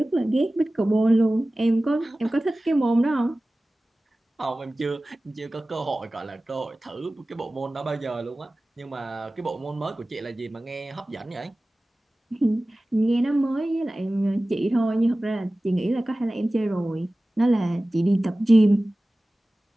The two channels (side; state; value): both; normal; correlation 0.97